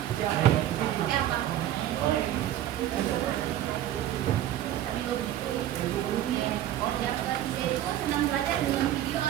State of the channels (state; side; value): quieter; left; 12.4 dB